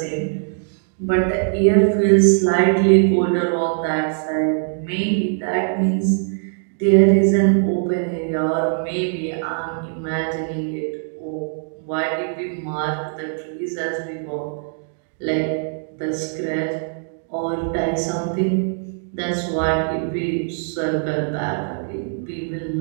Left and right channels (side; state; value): left; silent; digital silence